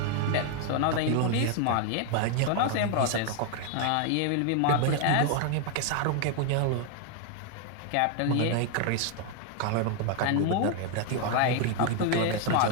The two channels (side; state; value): both; different; correlation 0.01